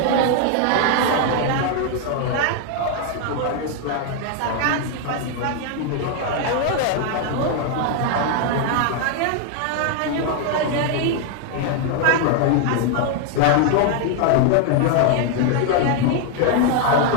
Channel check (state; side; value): different; both; correlation 0.00